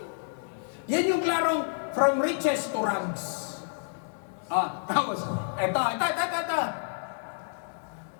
Yan yung klarong from riches to rags. Tapos, eto.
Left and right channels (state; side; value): silent; right; digital silence